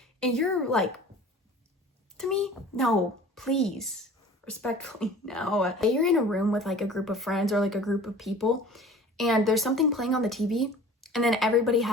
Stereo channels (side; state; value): both; normal; correlation 0.44